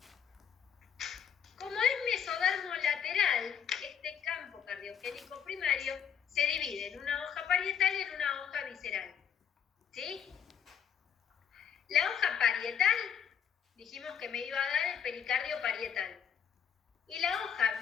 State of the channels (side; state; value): right; quieter; 8.2 dB